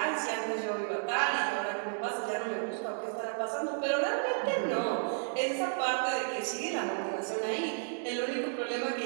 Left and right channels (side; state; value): left; silent; digital silence